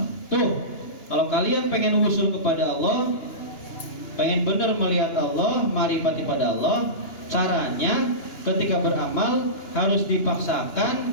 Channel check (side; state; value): right; late; 2.9 ms